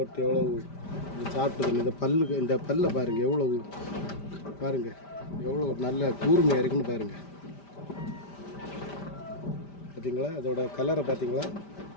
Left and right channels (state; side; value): late; right; 5.1 ms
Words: எவ்வளோ சாப்பிட்டுது. இந்த பல்லை பாருங்கள் எவ்வளோ பாருங்கள் எவ்வளோ நல்ல கூர்மையாக இருக்குன்னு பாருங்கள். பார்த்தீங்களா அதோட கலரை பார்த்தீங்களா